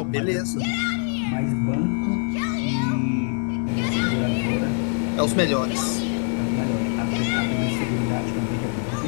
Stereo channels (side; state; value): right; quieter; 37.9 dB